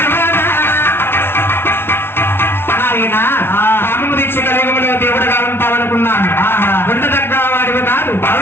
నాయన కామము దీక్ష కలియుగంలో దేవుడుగా ఉంటావనుకున్నాను. ఉండదగ్గ వాడివి కాదు.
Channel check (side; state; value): right; late; 0.11 ms